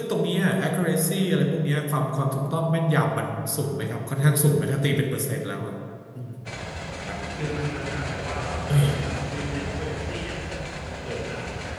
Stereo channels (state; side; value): identical; both; correlation 1.00